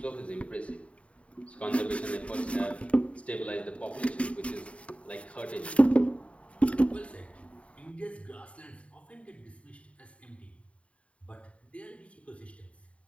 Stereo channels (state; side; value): late; right; 0.063 ms